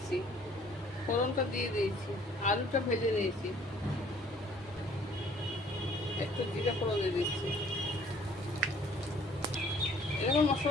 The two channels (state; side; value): normal; both; correlation 0.57